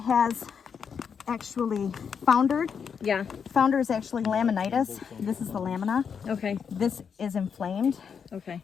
actually foundered, Yeah. founder is actually laminitis. This is the lamina. Okay. This is inflamed, Okay.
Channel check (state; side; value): quieter; right; 6.8 dB